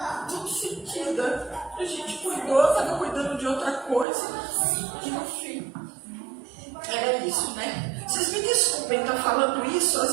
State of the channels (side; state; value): left; drops out; at 4.0 s